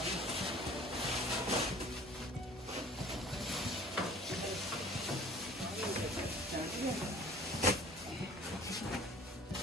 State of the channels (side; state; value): both; normal; correlation 0.48